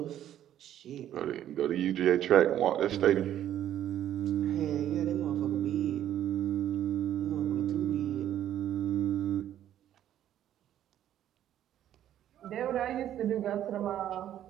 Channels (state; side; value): quieter; left; 11.4 dB